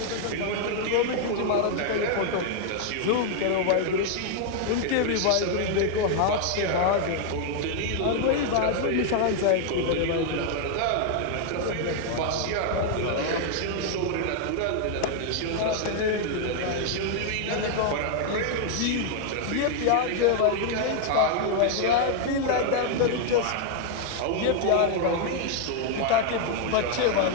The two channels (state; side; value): different; both; correlation 0.00